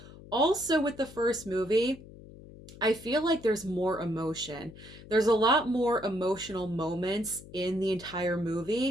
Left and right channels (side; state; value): left; noise; hum, 18 dB below the sound